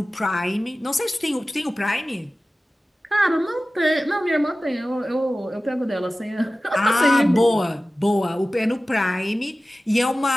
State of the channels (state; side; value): normal; both; correlation 0.96